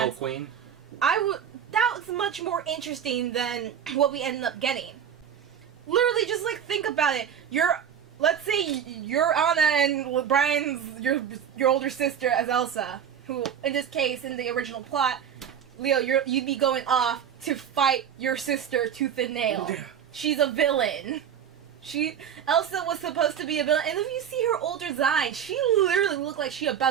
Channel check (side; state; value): left; quieter; 8.5 dB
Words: Queen? that was much more interesting than what we ended up getting. Literally, just like think about it. Let's say you're Anna and Brian's your older sister as Elsa, who in this case in the original plot, Leo, you'd be going off to fight your sister tooth and nail. Yeah. She's a villain. Elsa was supposed to be a villain, and if you see her older design, she literally looked like she